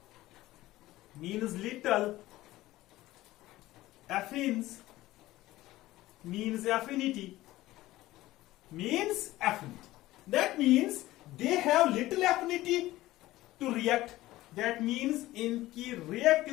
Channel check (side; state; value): right; quieter; 16.8 dB